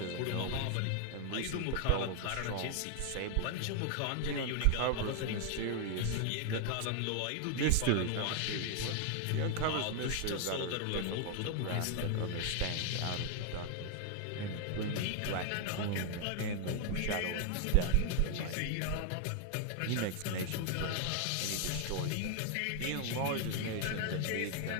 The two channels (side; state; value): both; different; correlation 0.00